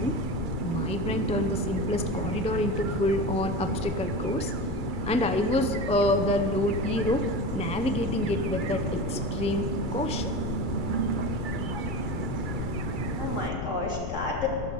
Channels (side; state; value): left; noise; rumble, 5 dB below the sound